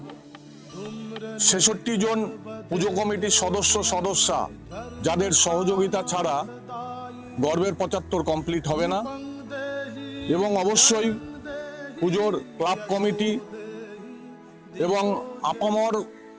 ৬৬ জন পুজো কমিটির সদস্যা যাদের সহযোগিতা ছাড়া গর্বের ৭৫ কমপ্লিট হবে না। এবং অবশ্যই পুজোর ক্লাব কমিটি এবং আপামর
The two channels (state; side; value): identical; both; correlation 1.00